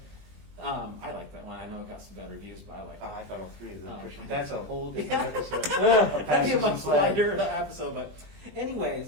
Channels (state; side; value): late; left; 20 ms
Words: I like that one. I know it got some bad reviews, but I like it. I thought all three of them. Oh. That's a whole different episode. That'd be a Passions much and Plaid. lighter episode, but